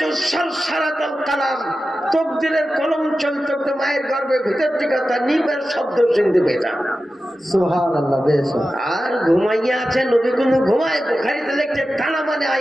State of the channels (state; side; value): normal; both; correlation 0.93